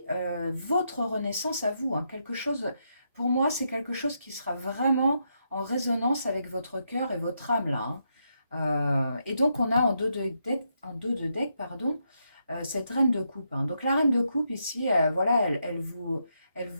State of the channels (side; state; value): both; inverted; correlation -0.80